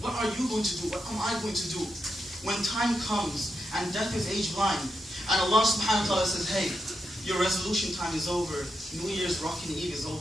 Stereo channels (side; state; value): both; normal; correlation 0.85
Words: What are you going to do? What am I going to do when time comes and death is age blind and Allah subhanahu wa ta'ala says, hey, your resolution time is over. New Year's Rockin' Eve is